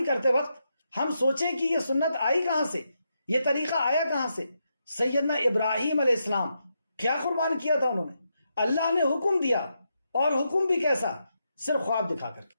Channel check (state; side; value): inverted; both; correlation -0.83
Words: کرتے وقت ہم سوچیں کہ یہ سنت آئی کہاں سے، یہ طریقہ آیا کہاں سے؟ سیدنا ابراہیم علیہ السلام کیا قربان کیا تھا انہوں نے؟ اللہ نے حکم دیا، اور حکم بھی کیسا؟ صرف خواب دکھا کر کے۔